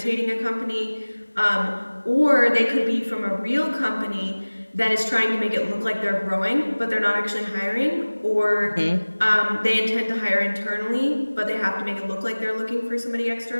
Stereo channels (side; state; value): both; inverted; correlation -1.00